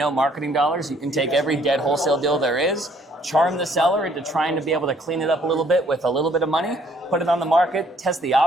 marketing dollars, you can take every dead wholesale deal there is, charm the seller into trying to be able to clean it up a little bit with a little bit of money, put it on the market, test the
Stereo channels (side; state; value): both; normal; correlation 0.63